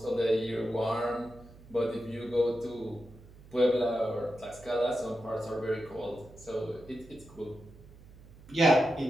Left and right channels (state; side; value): noise; right; hum, 21 dB below the sound